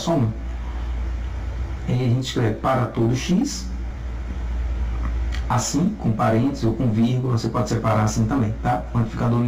um. E aí a gente escreve para todo x, assim, com parênteses ou com vírgula, você pode separar assim também, tá? Quantificador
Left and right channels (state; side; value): identical; both; correlation 1.00